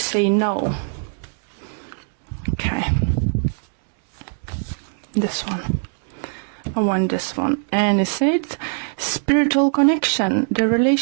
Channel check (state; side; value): silent; left; 64 dB below the other